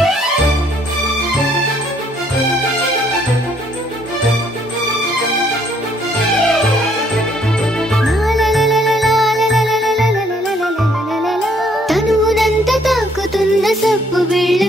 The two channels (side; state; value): both; normal; correlation 0.66